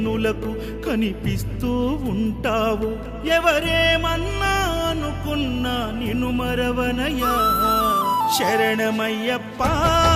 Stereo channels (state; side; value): identical; both; correlation 1.00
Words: కనిపిస్తూ ఉంటావు. ఎవరేమన్నా అనుకున్నా నిన్ను మరవనయ్యా. శరణమయ్యప్ప